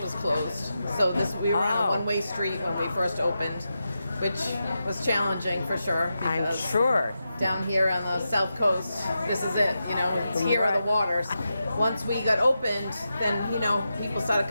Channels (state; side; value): inverted; both; correlation -0.89